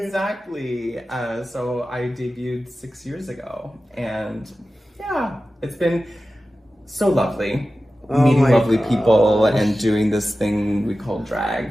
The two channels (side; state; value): both; normal; correlation 0.94